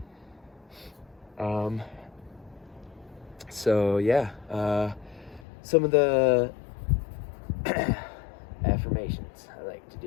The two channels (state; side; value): drops out; right; at 5.5 s